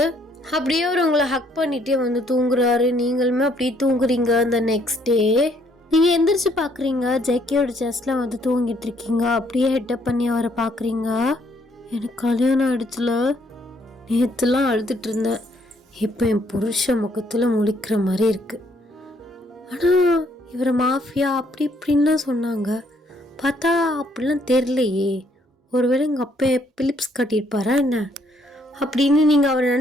அப்படியே அவர் உங்களை ஹக் பண்ணிகிட்டே வந்து தூங்குறாரு. நீங்களுமே அப்படியே தூங்குறீங்க. அந்த நெக்ஸ்ட் டே நீங்கள் எந்திரிச்சு பார்க்குறீங்க, ஜெக்கியோட செஸ்ட்டில் வந்து தூங்கிட்டு இருக்கீங்க. அப்படியே ஹெட்டப் பண்ணி அவரை பார்க்குறீங்க. எனக்கு கல்யாணம் ஆயிடுச்சுல, நேற்றுலாம் அழுதுட்டு இருந்தேன், இப்போ என் புருஷ முகத்தில் முழிக்கிற மாதிரி இருக்குது. ஆனால் இவரை மாஃபியா அப்படி இப்படின்லாம் சொன்னாங்க, பார்த்தா அப்படிலாம் தெரிலையே. ஒருவேளை எங்கள் அப்பா பிலிப்ஸ் கட்டியிருப்பாரா என்ன அப்படின்னு நீங்கள் அவரை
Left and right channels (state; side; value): normal; both; correlation 0.67